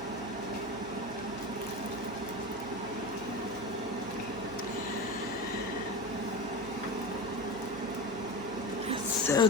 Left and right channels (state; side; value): normal; both; correlation 0.25